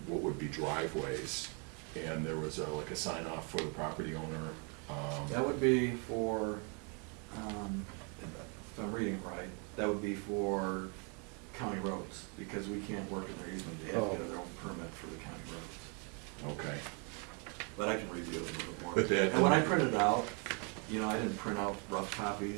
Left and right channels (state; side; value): quieter; left; 35.7 dB